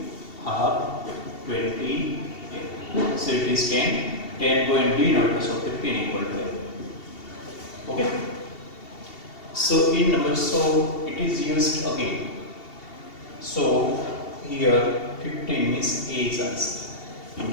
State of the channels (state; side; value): late; right; 2.7 ms